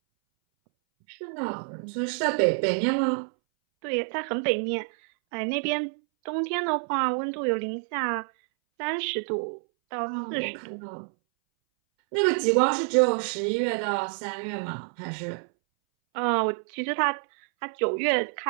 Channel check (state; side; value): silent; left; 60 dB below the other